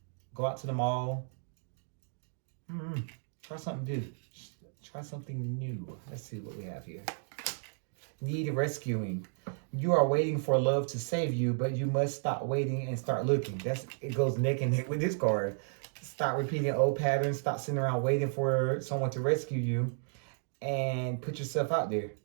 go out to the mall. Try something new. Try something new. Let's see what we have here. Need rescuing. You are waiting for love to save you, but you must stop waiting and start looking. It goes neck and neck with this card. Stop repeating old patterns. Stop sitting around waiting for someone to rescue you, and put yourself out there.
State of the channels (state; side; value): silent; left; digital silence